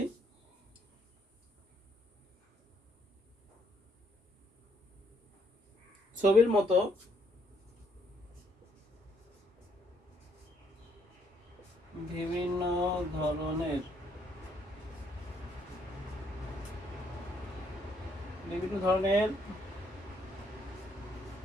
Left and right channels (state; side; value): normal; both; correlation 0.70